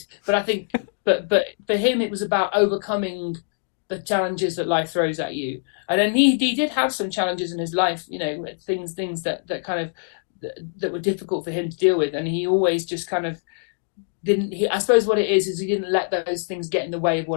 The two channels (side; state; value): right; silent; digital silence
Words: but I think. But for him, it was about overcoming the challenges that life throws at you. And then he did have some challenges in his life, things that kind of that were difficult for him to deal with. And he always just kind of didn't. I suppose what it is he didn't let those things get in the way of